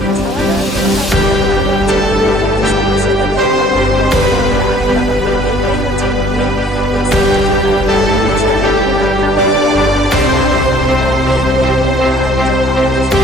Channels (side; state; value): both; normal; correlation 0.57